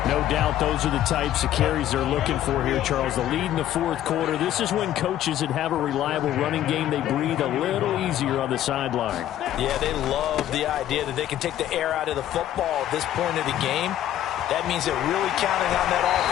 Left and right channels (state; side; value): quieter; right; 12.1 dB